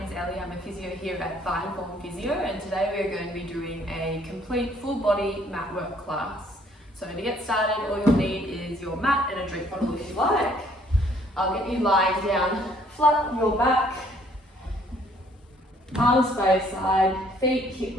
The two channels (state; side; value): normal; both; correlation 0.62